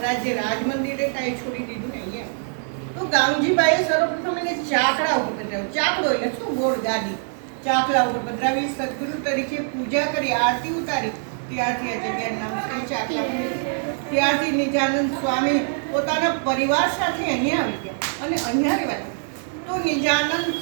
રાજ મંદિરે કાંઈ છોડી દીધું ને અહીંયા તો ગામજીબાઈએ સર્વપ્રથમ એને ચાકડા ઉપર પધરાવ્યો। ચાકડો એટલે શું? ગોળ ગાદી, ચાકડા ઉપર પધરાવી સદગુરુ તરીકે પૂજા કરી, આરતી ઉતારી। ત્યારથી આ જગ્યાનું નામ છે ચાકડા। ત્યારથી નિજાનંદ સ્વામી પોતાના પરિવાર સાથે અહીંયા આવી ગયા અને અહીંયા રહેવા તો નિજાનંદ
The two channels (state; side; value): silent; left; 63 dB below the other